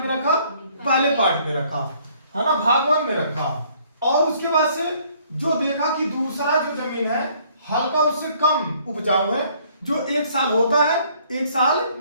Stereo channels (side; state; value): both; inverted; correlation -0.62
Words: में रखा? पहले पार्ट में रखा, है ना, भाग 1 में रखा। और उसके बाद से जो देखा कि दूसरा जो जमीन है हल्का उससे कम उपजाऊ है, जो 1 साल होता है 1 साल